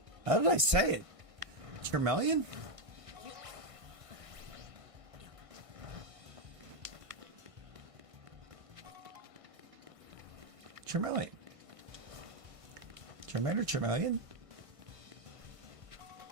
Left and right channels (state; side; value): late; left; 1.6 ms